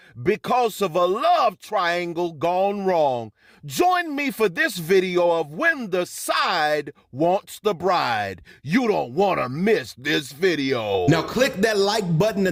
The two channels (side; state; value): both; identical; correlation 1.00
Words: because of a love triangle gone wrong. Join me for this video of when the side wants the bride. You don't want to miss this video. Now click that like button